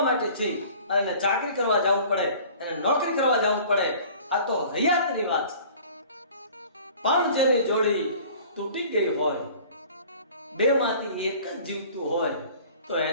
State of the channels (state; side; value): inverted; both; correlation -0.47